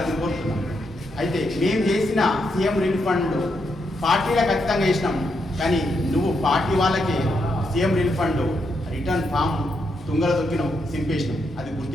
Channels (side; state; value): both; normal; correlation 0.80